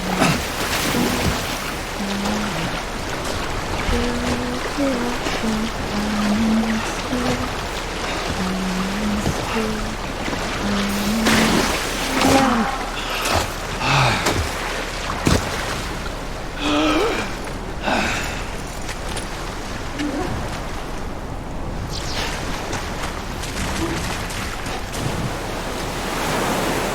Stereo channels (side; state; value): both; identical; correlation 1.00